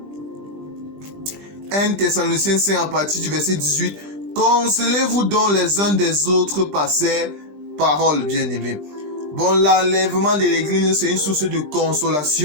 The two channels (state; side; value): late; left; 20 ms